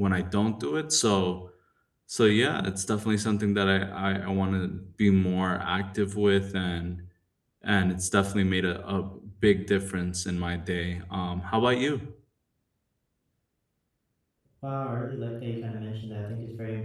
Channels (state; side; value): identical; both; correlation 1.00